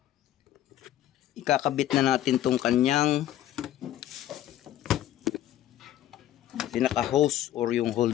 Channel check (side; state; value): right; quieter; 12.6 dB